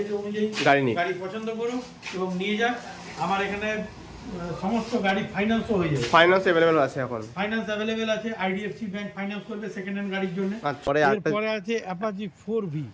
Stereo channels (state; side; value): identical; both; correlation 1.00